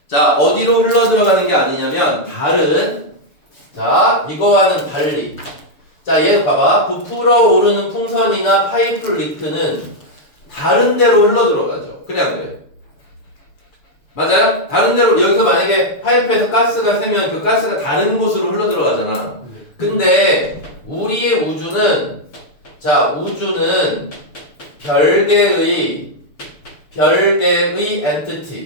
자, 어디로 흘러 들어가는 게 아니냐면 다른 자, 이거와는 달리 자, 얘 봐봐. 부풀어 오르는 풍선이나 파이프 리크는 다른 데로 흘러 들어가죠. 그래 안 그래? 맞아요? 다른 데로 여기서 만약에 파이프에서 가스가 새면 그 가스가 다른 곳으로 흘러 들어가잖아. 근데 우리의 우주는 자, 우주는 별개의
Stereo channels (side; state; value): right; late; 6.8 ms